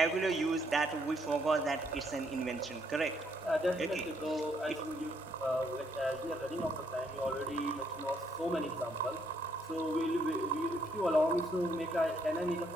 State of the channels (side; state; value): both; normal; correlation 0.71